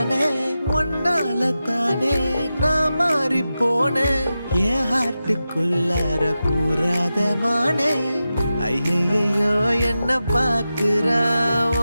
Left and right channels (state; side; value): inverted; both; correlation -0.92